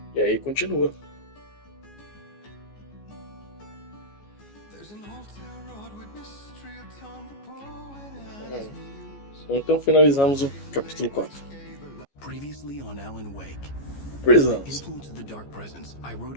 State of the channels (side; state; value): right; late; 14 ms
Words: E aí continua. Então finalizamos o capítulo 4. Previously on Alan Wake. Prisons. Influence of the dark presence, I wrote